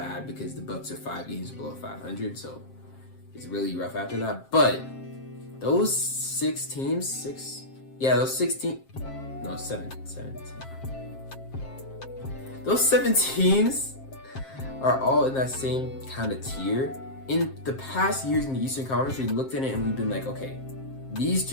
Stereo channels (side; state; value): right; late; 7.5 ms